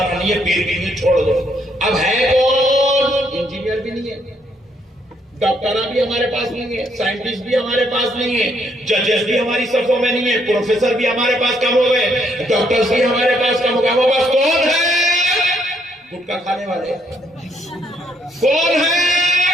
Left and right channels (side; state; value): both; normal; correlation 0.72